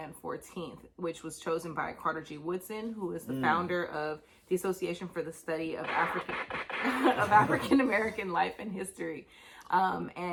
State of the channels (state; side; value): identical; both; correlation 1.00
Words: 14th, which was chosen by Carter G. Woodson, who is the founder of the Association for the Study of African American Life and History.